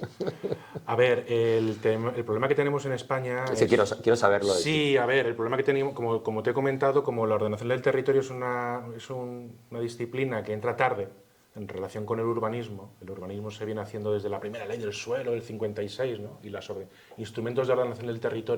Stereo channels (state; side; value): identical; both; correlation 1.00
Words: A ver, el problema que tenemos en España... Quiero saberlo. Sí, a ver, el problema que tenemos, como te he comentado, como la ordenación del territorio es una disciplina que entra tarde en relación con el urbanismo se viene haciendo desde la primera ley del suelo del 56, ¿no? Y los instrumentos de ordenación del